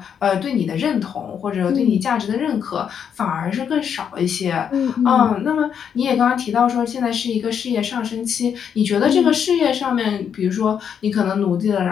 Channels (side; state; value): right; quieter; 7.9 dB